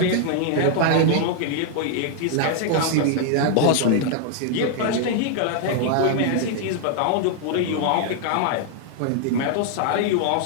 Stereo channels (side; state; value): both; different; correlation 0.00